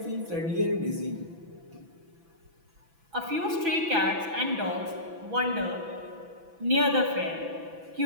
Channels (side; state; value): left; late; 6.0 ms